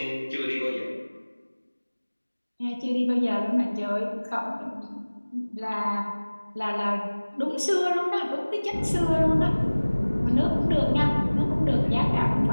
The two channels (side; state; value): both; inverted; correlation -1.00